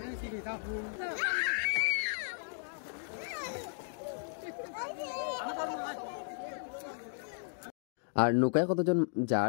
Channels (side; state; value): right; silent; digital silence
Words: আর নৌকায় কতজন